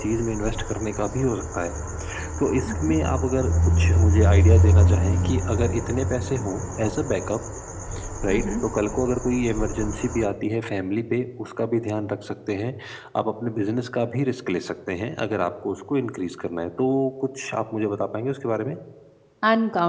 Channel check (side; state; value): both; identical; correlation 1.00